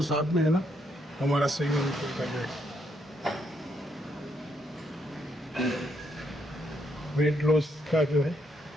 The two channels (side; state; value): both; normal; correlation 0.75